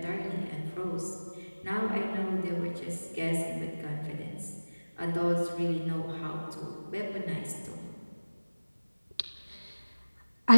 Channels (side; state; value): both; inverted; correlation -1.00